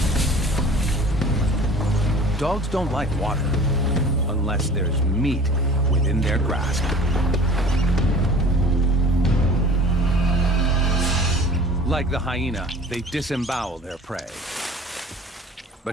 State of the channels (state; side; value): normal; both; correlation 0.45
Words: Dogs don't like water unless there's meat within their grasp. Like the hyena, they disembowel their prey.